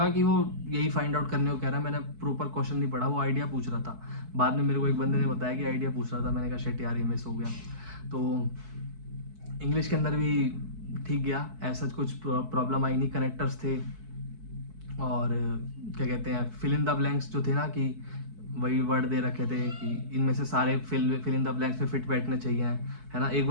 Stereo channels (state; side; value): late; left; 4.6 ms